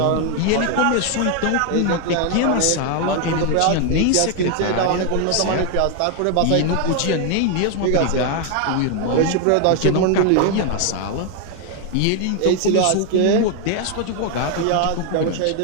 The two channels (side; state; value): both; different; correlation 0.01